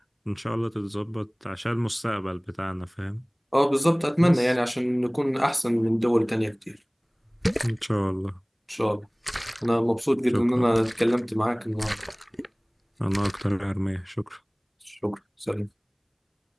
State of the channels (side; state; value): both; identical; correlation 1.00